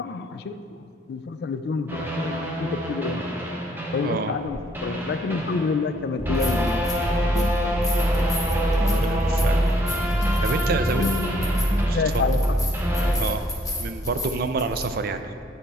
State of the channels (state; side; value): normal; both; correlation 0.65